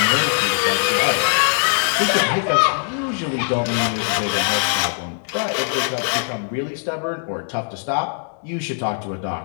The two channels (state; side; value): silent; right; 65 dB below the other